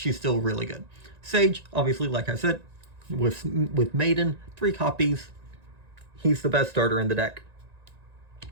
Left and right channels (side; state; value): left; late; 1.9 ms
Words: still really good. Sage, obviously, like I said, with Maiden, 3 copies. He's the best starter in the deck.